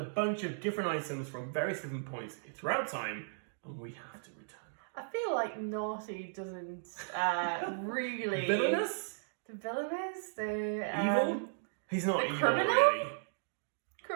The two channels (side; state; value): left; silent; digital silence